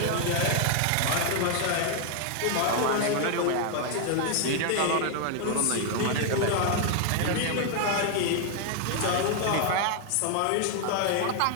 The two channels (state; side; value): different; both; correlation 0.00